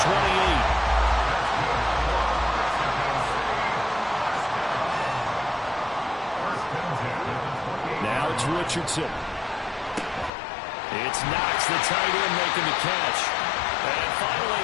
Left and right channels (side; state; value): right; drops out; at 10.3 s